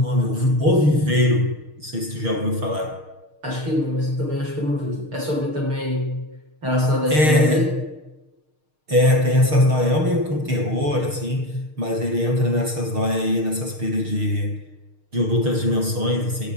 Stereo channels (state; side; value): late; left; 6.5 ms